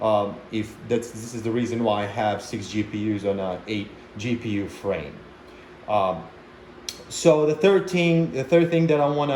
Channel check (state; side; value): identical; both; correlation 1.00